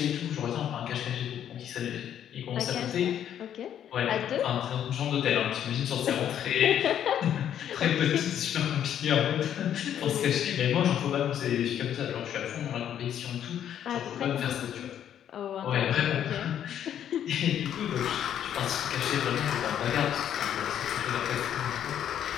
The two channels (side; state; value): right; quieter; 10.0 dB